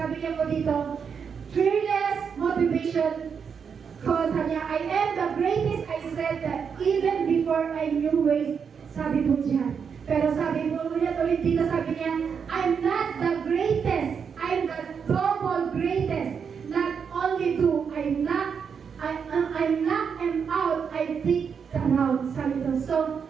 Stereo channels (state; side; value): quieter; left; 6.6 dB